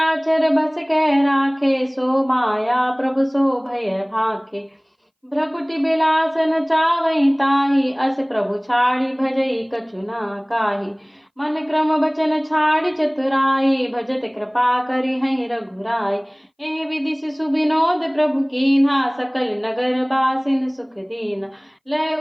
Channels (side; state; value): both; identical; correlation 1.00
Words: बस कह राखे, सो माया प्रभु सो भय भाखे। भ्रकुटि बिलास न चावई ताहि, अस प्रभु छाड़ी भजई कछु ना काही। मन क्रम बचन छाड़ी चतुराई, भजत कृपा करि हई रघुराई। एहि विधि शिशु विनोद प्रभु कीन्हा, सकल नगर बासिन सुख दीना। लय